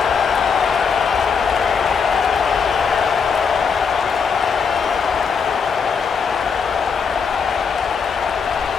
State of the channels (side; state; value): right; quieter; 6.0 dB